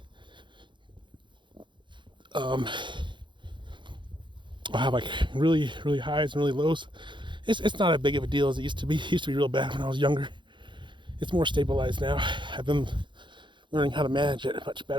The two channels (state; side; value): late; left; 0.23 ms